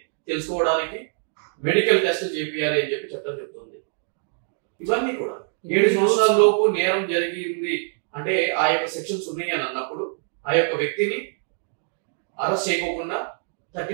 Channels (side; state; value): left; silent; 62 dB below the other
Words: తెలుసుకోవడానికి మెడికల్ టెస్ట్ చేపియాలి అని చెప్పి చట్టం చెప్తుంది. ఇవన్నీ కూడా 7 సంవత్సరాల లోపు నేరం జరిగింది అంటే ఆ యొక్క సెక్షన్స్ ఉన్నాయి అని అన్నప్పుడు ఆ యొక్క వ్యక్తిని అరెస్ట్ చేయకోకుండా